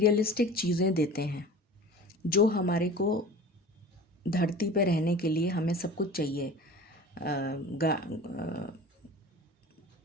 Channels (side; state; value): both; normal; correlation 0.39